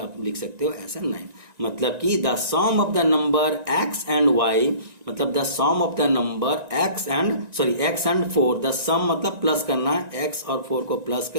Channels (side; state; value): left; late; 1.9 ms